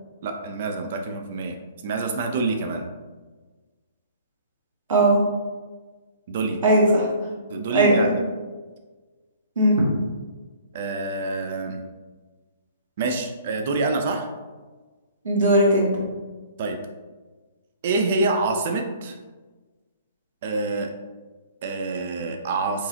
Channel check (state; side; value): inverted; both; correlation -0.50